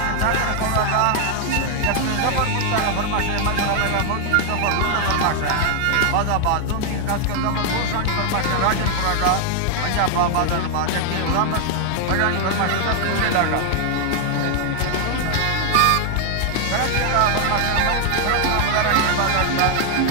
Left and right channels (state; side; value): different; both; correlation 0.00